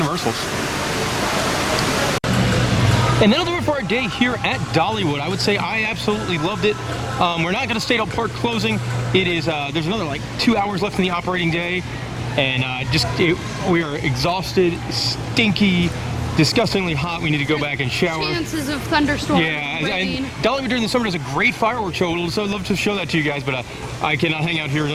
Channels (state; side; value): identical; both; correlation 1.00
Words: And that'll do it for our day here at Dollywood. I would say I absolutely loved it. We're not going to stay till park closing. It is there's another like 2 hours left in the operating day, and we are exhausted, stinky, disgustingly hot. We need to go back and shower. Chances of thunderstorms. Yeah, rain. and Dollywood during the summer does a great fireworks show. So I'd love to show that to you guys, but I cannot hang out here